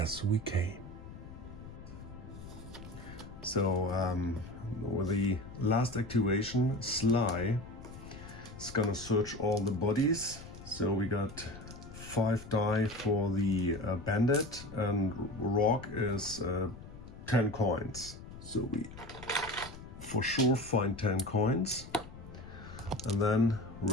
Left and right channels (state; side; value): noise; left; rumble, 15 dB below the sound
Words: we came. So, with the last activation, Sly is gonna search all the bodies. So we got 5 die for the bandit, and Rorg is 10 coins. So we for sure find 10 coins. And then